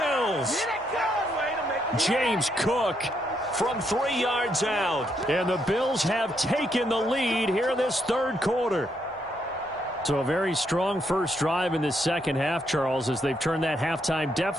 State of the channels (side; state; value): both; normal; correlation 0.77